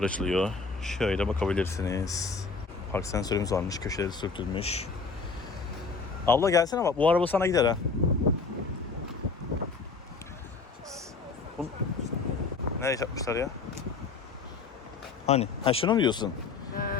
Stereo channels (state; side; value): quieter; right; 4.6 dB